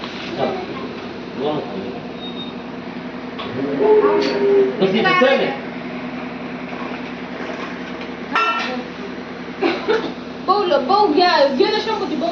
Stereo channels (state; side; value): identical; both; correlation 1.00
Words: बहु घ्या गेलं शंभूची